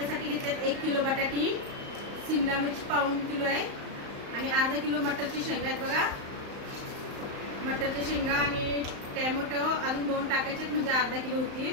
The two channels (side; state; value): left; late; 35 ms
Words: घेतल्यात 1 किलो बटाटी, शिमला मिरची पाऊण किलो आहे आणि अर्धा किलो मटरची शेंगा आहेत बघा. मटरच्या शेंगा आणि टॅमॅटो अजून 2 टाकायचे म्हणजे अर्धा किलो होतील.